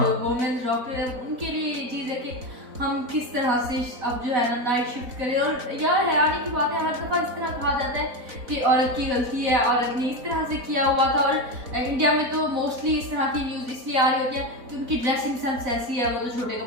जो वुमेन डॉक्टर है उनके लिए ये चीज़ है कि हम किस तरह से अब जो है ना नाइट शिफ्ट करें। और यार हैरानी की बात है, हर दफ़ा इस तरह कहा जाता है कि औरत की गलती है, औरत ने इस तरह से किया हुआ था। और इंडिया में तो मोस्टली इस तरह की न्यूज़ इसलिए आ रही होती है कि उनकी ड्रेसिंग सेंस ऐसी है, वो तो छोटे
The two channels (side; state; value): left; late; 4.0 ms